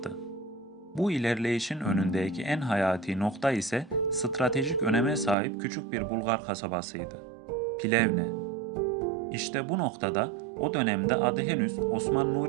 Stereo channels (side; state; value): left; drops out; at 5.4 s